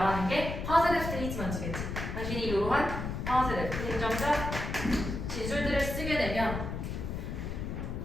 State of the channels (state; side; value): noise; left; rumble, 4 dB below the sound